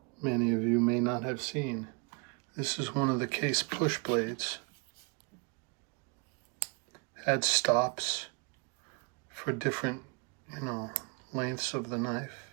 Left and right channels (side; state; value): left; quieter; 33.2 dB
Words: many of you may not have seen. This is one of the Case push blades. Had stops for different, lengths of the knife.